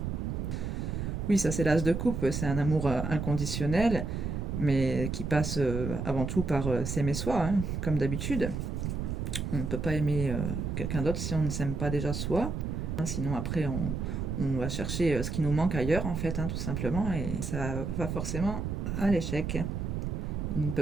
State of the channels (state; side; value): noise; right; rumble, 3 dB below the sound